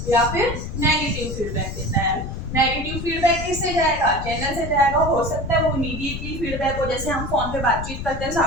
या फिर नेगेटिव फीडबैक देता है। नेगेटिव फीडबैक किससे जाएगा, चैनल से जाएगा। हो सकता है वो इमीडिएटली फीडबैक हो, जैसे हम फोन पे बातचीत करते हैं,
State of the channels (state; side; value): noise; left; rumble, 7 dB below the sound